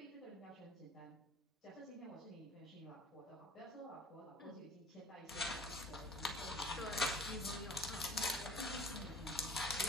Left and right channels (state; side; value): normal; both; correlation 0.47